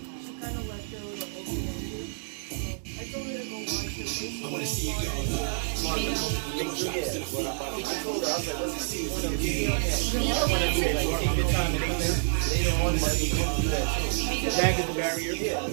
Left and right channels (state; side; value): silent; left; 59 dB below the other